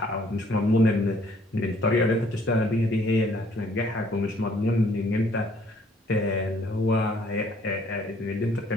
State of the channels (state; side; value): normal; both; correlation 0.62